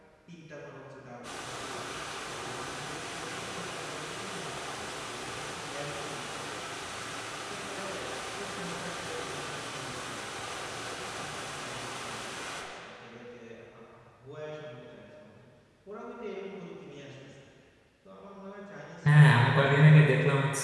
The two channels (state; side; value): identical; both; correlation 1.00